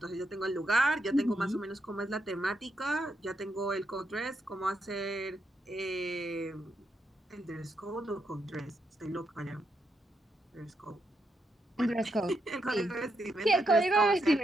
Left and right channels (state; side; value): normal; both; correlation 0.81